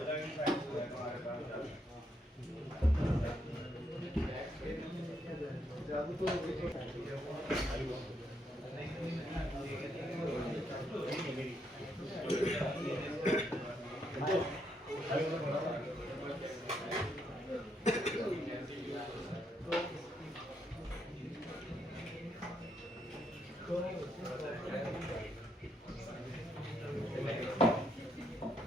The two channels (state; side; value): normal; both; correlation 0.76